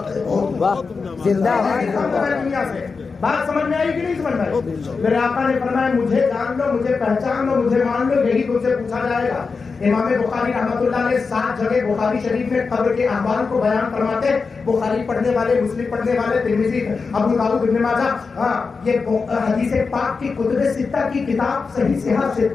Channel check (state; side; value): quieter; right; 4.7 dB